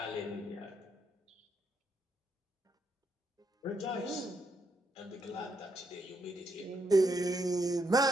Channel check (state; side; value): normal; both; correlation 0.77